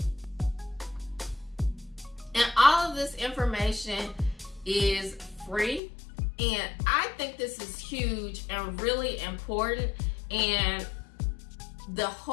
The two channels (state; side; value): drops out; right; at 5.8 s